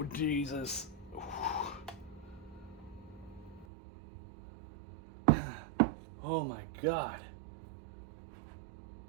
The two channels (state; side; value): drops out; left; at 3.7 s